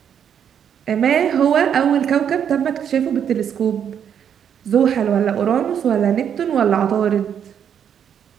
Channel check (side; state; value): left; quieter; 8.5 dB